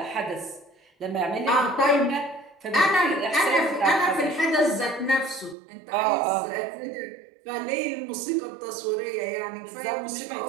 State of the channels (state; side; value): drops out; left; at 5.6 s